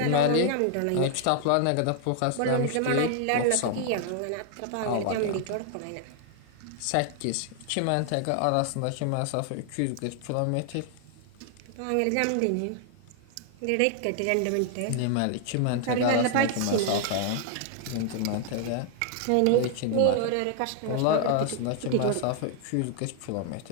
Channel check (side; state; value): both; different; correlation 0.00